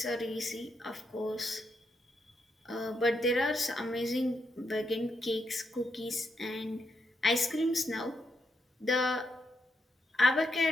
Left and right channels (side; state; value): both; normal; correlation 0.80